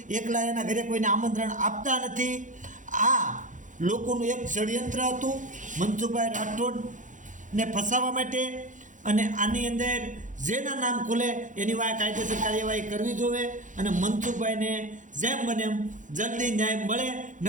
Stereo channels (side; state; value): left; late; 0.37 ms